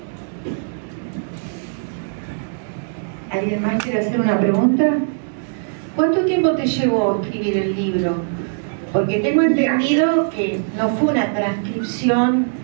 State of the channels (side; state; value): left; silent; digital silence